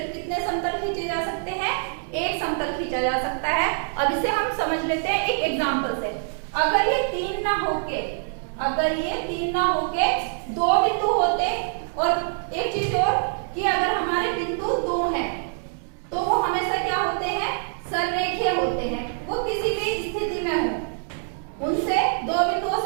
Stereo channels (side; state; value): left; silent; digital silence